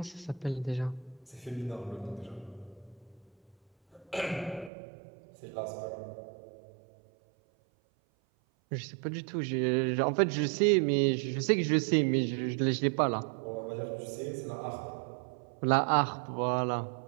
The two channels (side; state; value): left; drops out; at 4.7 s